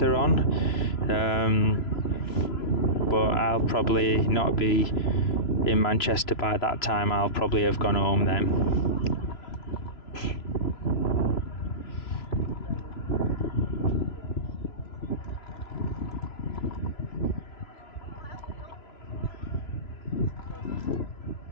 on, but I'll probably not be in Manchester by that time. I'll probably have gone home then.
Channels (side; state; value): right; late; 3.0 ms